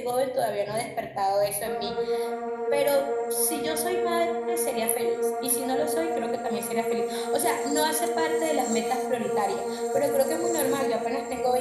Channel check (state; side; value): identical; both; correlation 1.00